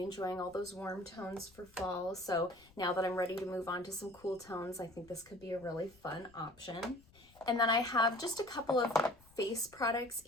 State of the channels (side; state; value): left; noise; rumble, 27 dB below the sound